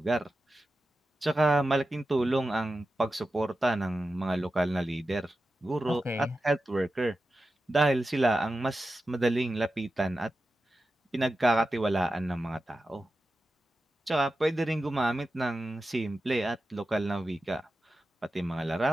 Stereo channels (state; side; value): normal; both; correlation 0.93